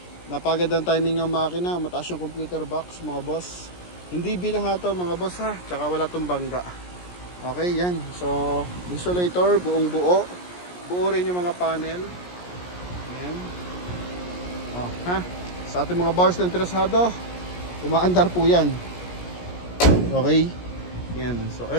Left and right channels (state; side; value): late; right; 17 ms